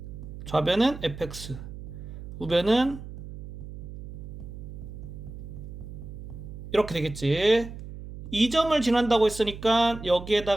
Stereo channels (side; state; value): right; noise; hum, 11 dB below the sound